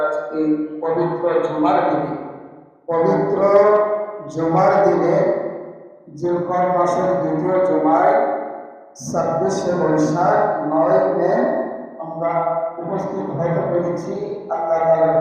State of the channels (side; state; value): both; identical; correlation 1.00